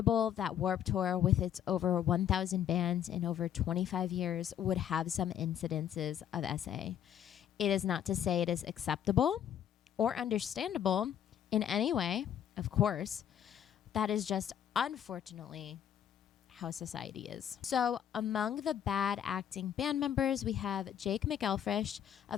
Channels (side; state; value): right; quieter; 9.7 dB